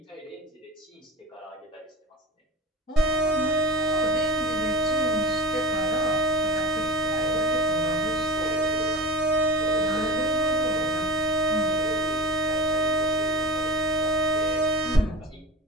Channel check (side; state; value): both; normal; correlation 0.32